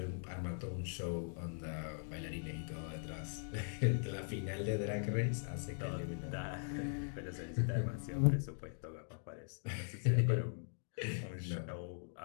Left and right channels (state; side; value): silent; right; digital silence